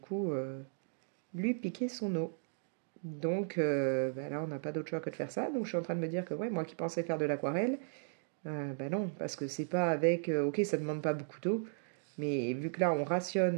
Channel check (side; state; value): left; silent; digital silence